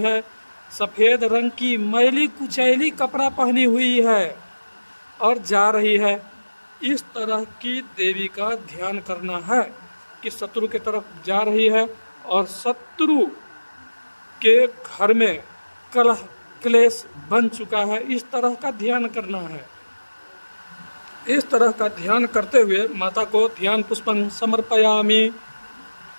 सफ़ेद रंग की मैली कुचैली कपड़ा पहनी हुई है और जा रही है। इस तरह की देवी का ध्यान करना है कि शत्रु की तरफ जा रही है और शत्रु के घर में कलह क्लेश बन चुका है। इस तरह का ध्यान करना है। इस तरह का ध्यान करते हुए माता को ध्यान पुष्पं समर्पयामि।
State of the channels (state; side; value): inverted; both; correlation -1.00